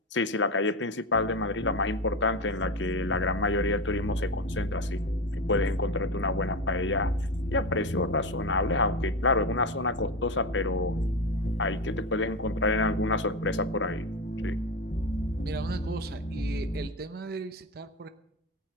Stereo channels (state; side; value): normal; both; correlation 0.19